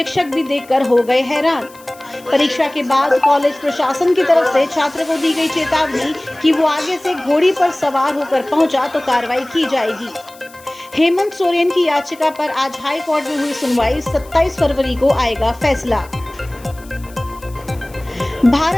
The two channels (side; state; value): left; noise; hiss, 23 dB below the sound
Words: भी देखकर हो गए हैरान। परीक्षा के बाद कॉलेज प्रशासन की तरफ से छात्र को दी गई चेतावनी कि वो आगे से घोड़ी पर सवार होकर पहुंचा तो कार्रवाई की जाएगी। हेमंत सोरेन की याचिका पर आज हाई कोर्ट में हुई सुनवाई। 27 फरवरी को आएगा फैसला।